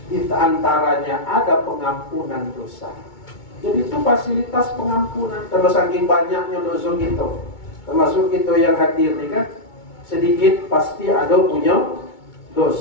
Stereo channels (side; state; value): right; late; 2.2 ms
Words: di antaranya ada pengampunan dosa. Jadi itu fasilitas pengampunan. Terus saking banyaknya dosa kita, termasuk kita yang hadir nih kan, sedikit pasti ada punya